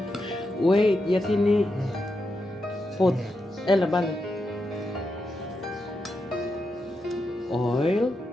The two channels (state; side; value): normal; both; correlation 0.86